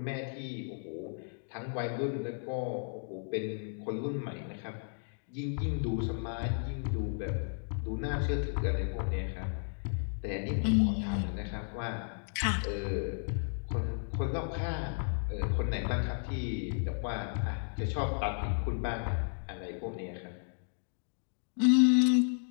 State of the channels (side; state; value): right; silent; digital silence